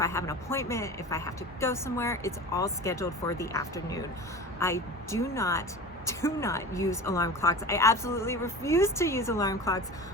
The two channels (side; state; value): both; normal; correlation 0.34